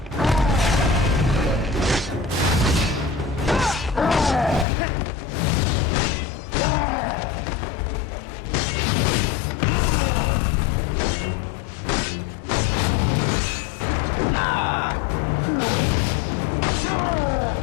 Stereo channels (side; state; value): right; drops out; at 4.7 s